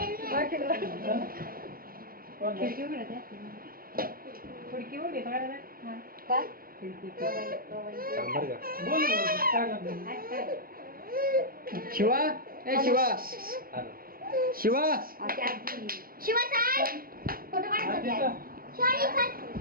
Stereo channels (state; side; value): late; left; 0.42 ms